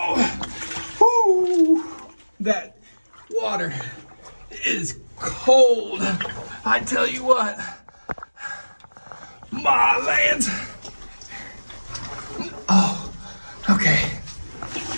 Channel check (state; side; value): inverted; both; correlation -1.00